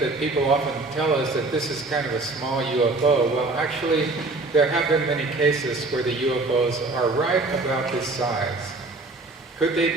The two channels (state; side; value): quieter; left; 3.2 dB